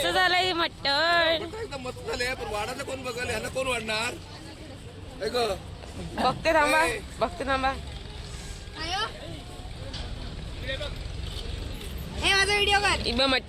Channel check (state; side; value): identical; both; correlation 1.00